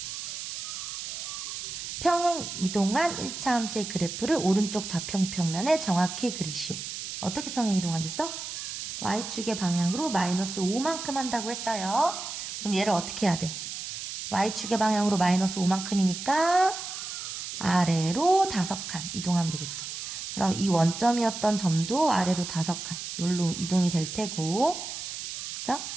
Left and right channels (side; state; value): right; noise; hiss, 7 dB below the sound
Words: 평행 이동한 1차 함수의 그래프를 오른쪽 좌평평면에 정확히 그리시오. 어떻게 평행 이동한댔어? y축의 방향으로 마이너스 5만큼 한다고 했어요. 그럼 얘를 어떻게 해야 돼? y축의 방향으로 마이너스 5만큼이니까 아래로 5칸 이동하면 되겠죠. 그럼 이 원점이었던 점도 아래로 5칸 여기로 이동이 될 테고, 그죠?